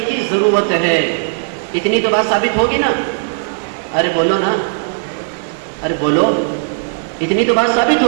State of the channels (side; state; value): left; silent; 61 dB below the other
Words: کی ضرورت ہے، اتنی تو بات ثابت ہوگی نا؟ ارے بولو نا، ارے بولو، اتنی تو بات ثابت